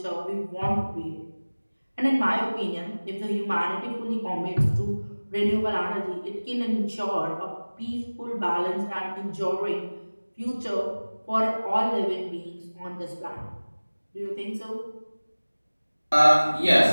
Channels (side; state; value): both; inverted; correlation -1.00